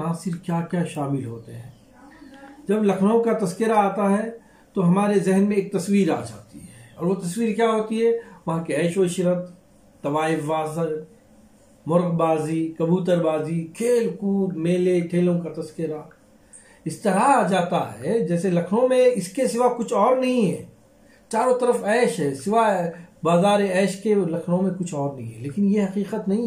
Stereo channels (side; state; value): both; identical; correlation 1.00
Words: کیا کیا شامل ہوتے ہیں۔ جب لکھنؤ کا تذکرہ آتا ہے تو ہمارے ذہن میں ایک تصویر آ جاتی ہے، اور وہ تصویر کیا ہوتی ہے؟ وہاں کے عیش و عشرت، طوائف بازی، مرغ بازی، کبوتر بازی، کھیل کود، میلے ٹھیلوں کا تذکرہ اس طرح آ جاتا ہے جیسے لکھنؤ میں اس کے سوا کچھ اور نہیں ہے، چاروں طرف عیش ہے، سوائے بازار عیش کے لکھنؤ میں کچھ اور نہیں ہے، لیکن یہ حقیقت